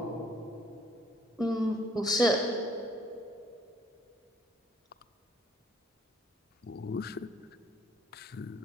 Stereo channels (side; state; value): both; normal; correlation 0.63